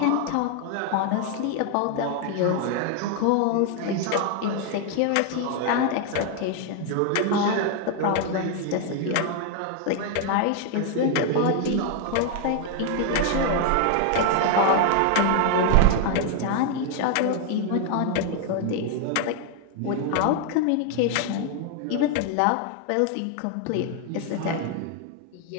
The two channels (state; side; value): different; both; correlation 0.00